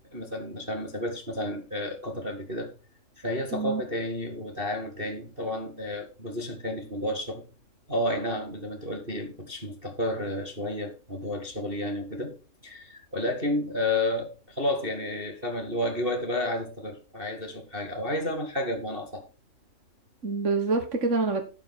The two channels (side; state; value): left; late; 2.7 ms